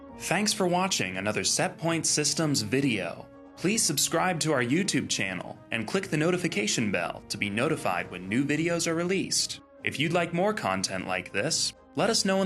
Thanks for watching another Setpoint Systems video. Please subscribe to our YouTube channel and click the notification bell to be notified when new videos are released. If you'd like more content like this, let us know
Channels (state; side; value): identical; both; correlation 1.00